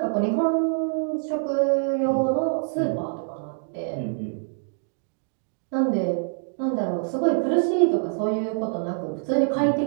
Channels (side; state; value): left; silent; digital silence